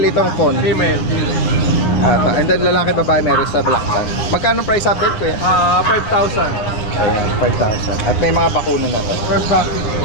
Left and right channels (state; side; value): late; right; 9.5 ms